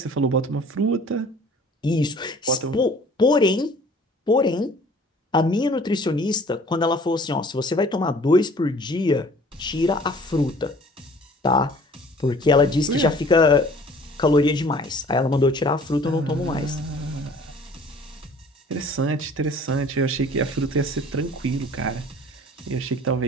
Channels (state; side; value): normal; both; correlation 0.51